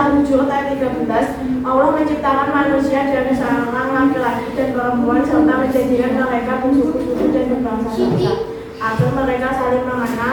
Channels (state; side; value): identical; both; correlation 1.00